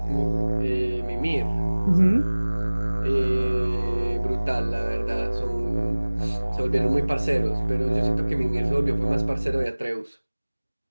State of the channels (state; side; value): inverted; both; correlation -1.00